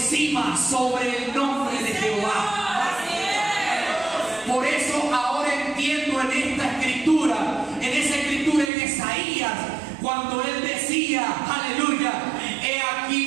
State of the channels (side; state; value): left; drops out; at 8.7 s